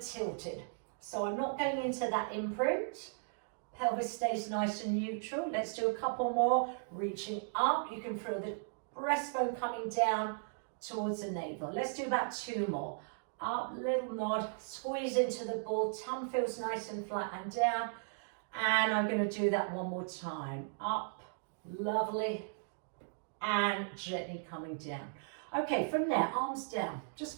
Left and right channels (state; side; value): silent; left; digital silence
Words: tilted, so I'm not going into that imprint. Pelvis stays nice and neutral. Let's do a couple more, reaching up. You can feel the breastbone coming down towards the navel. Let's do about 2 more. Up, little nod, squeeze into the ball, tongue feels nice and flat and down. And I'm going to do that one more time. Up, lovely, and gently coming down. Okay, from there, arms down. Just